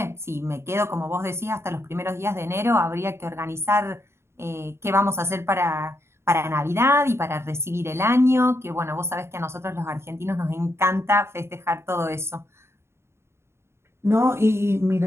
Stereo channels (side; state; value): left; late; 0.13 ms